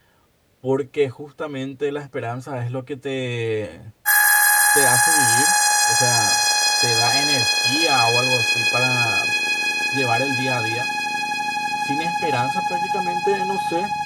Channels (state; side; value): identical; both; correlation 1.00